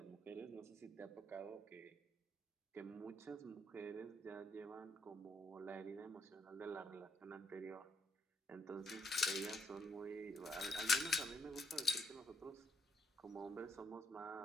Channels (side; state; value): both; normal; correlation 0.72